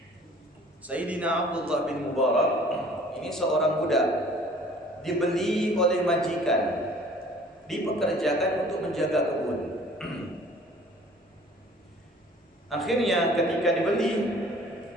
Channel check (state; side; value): normal; both; correlation 0.51